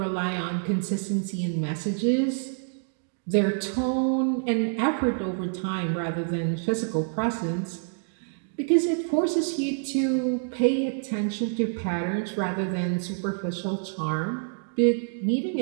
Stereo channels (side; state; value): left; silent; digital silence